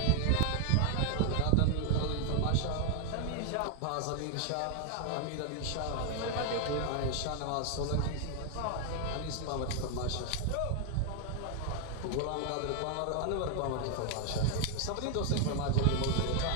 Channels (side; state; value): both; different; correlation 0.00